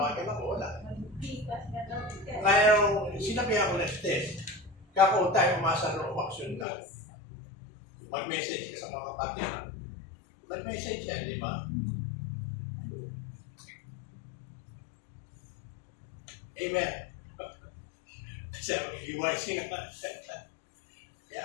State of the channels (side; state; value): right; drops out; at 6.7 s